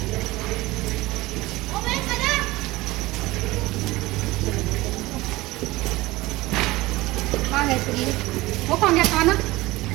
वो कौन गया खाना?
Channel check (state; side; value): quieter; left; 19.6 dB